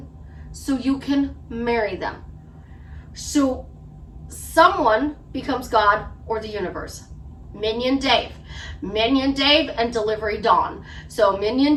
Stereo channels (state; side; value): identical; both; correlation 1.00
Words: so you can marry them. So someone becomes God or the universe. Minion Dave and Delivery Dawn. So Minion